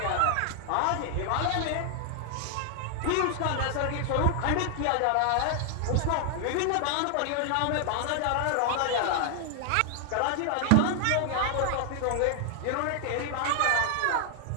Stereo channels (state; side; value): different; both; correlation 0.00